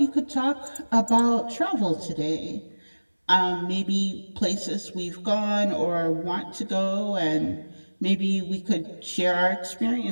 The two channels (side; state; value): both; inverted; correlation -1.00